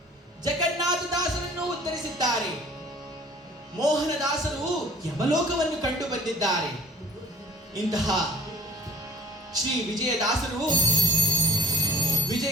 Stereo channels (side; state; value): both; normal; correlation 0.47